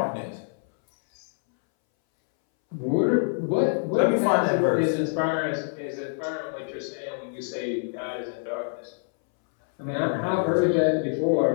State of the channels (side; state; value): right; silent; 61 dB below the other